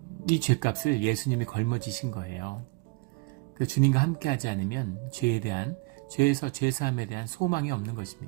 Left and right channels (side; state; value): left; quieter; 25.8 dB